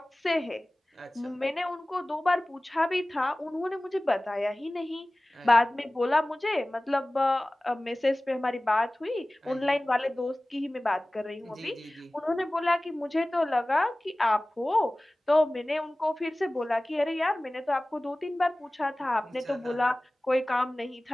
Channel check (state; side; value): normal; both; correlation 0.98